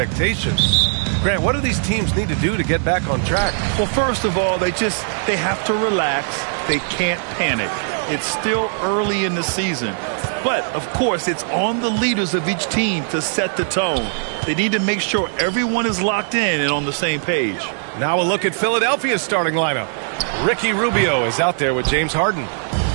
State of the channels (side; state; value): left; silent; 65 dB below the other